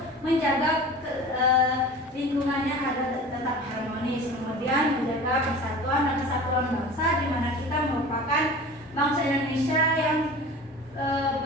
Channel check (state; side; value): normal; both; correlation 0.38